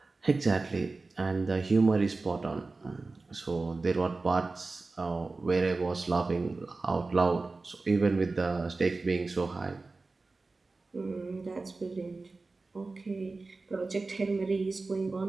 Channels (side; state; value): left; quieter; 3.6 dB